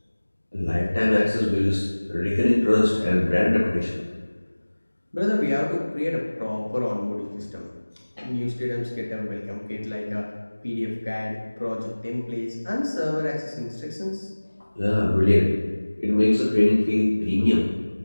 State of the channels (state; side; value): inverted; both; correlation -1.00